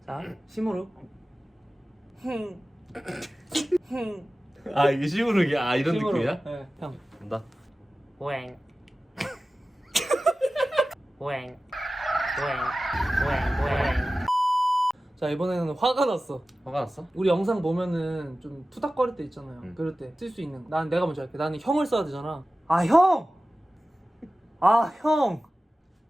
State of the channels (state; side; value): normal; both; correlation 0.96